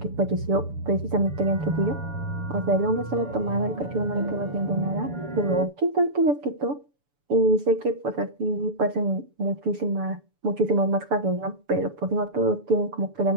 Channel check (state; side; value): late; left; 7.0 ms